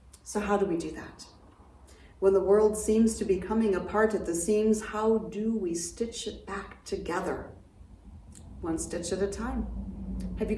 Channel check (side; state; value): both; identical; correlation 1.00